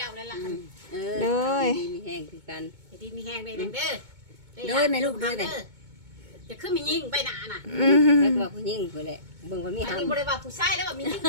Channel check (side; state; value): left; late; 2.2 ms